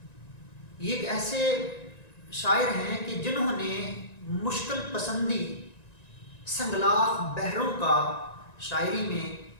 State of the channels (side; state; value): right; late; 1.9 ms